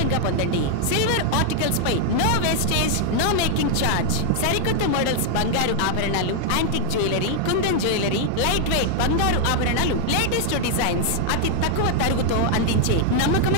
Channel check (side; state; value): both; different; correlation 0.00